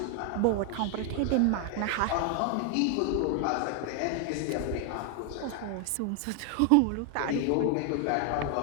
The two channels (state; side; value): different; both; correlation 0.00